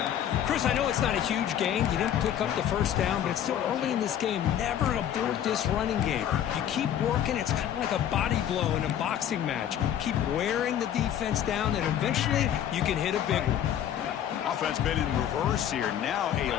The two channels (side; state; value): right; quieter; 10.2 dB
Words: Chris, I know it's not a huge gain. You didn't pick up the first down, but it's still early in this game. Never abort this running game. You keep working. It's kind of like a body blow in a boxing match. Keep wearing the defense down, and eventually you can hit a big one. Offense been in reverse here. Now a